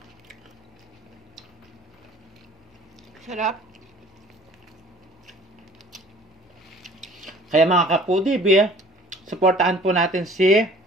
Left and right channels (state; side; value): normal; both; correlation 0.51